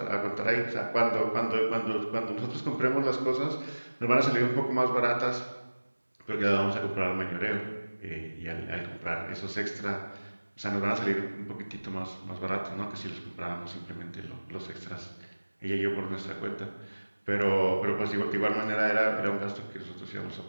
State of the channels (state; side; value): inverted; both; correlation -1.00